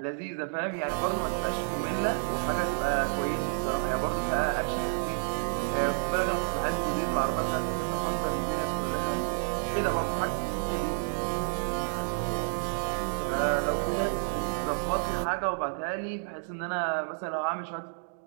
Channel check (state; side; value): silent; left; digital silence